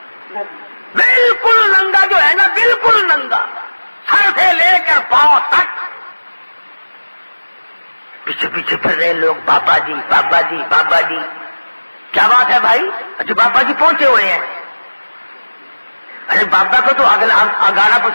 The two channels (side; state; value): both; inverted; correlation -1.00